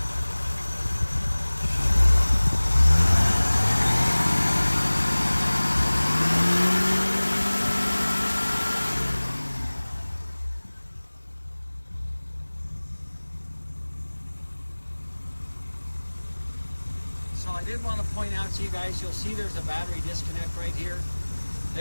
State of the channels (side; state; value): both; inverted; correlation -1.00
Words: So I did want to point out to you guys, you'll see there's a battery disconnect right here.